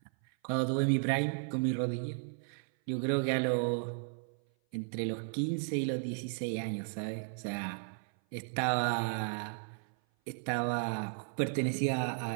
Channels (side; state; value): left; silent; 55 dB below the other